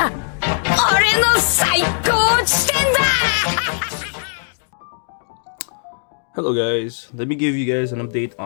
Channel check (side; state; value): right; silent; digital silence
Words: 俺の最高地点だ Hello guys, let me give you guys an update